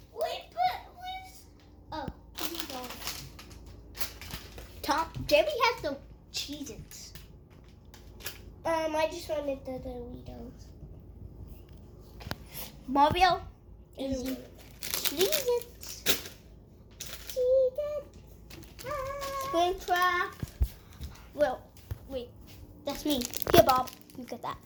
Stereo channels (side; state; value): both; identical; correlation 1.00